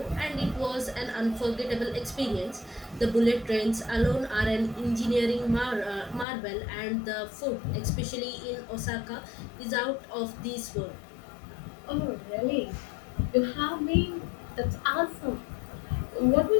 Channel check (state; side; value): drops out; right; at 6.2 s